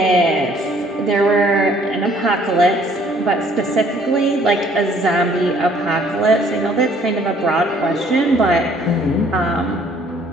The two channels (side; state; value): both; normal; correlation 0.60